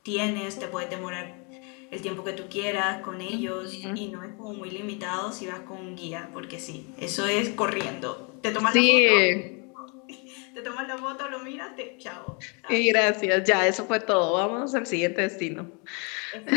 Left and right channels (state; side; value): quieter; right; 34.0 dB